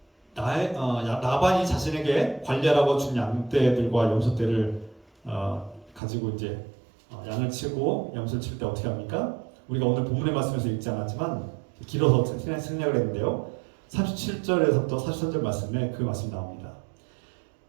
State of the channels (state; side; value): drops out; left; at 6.0 s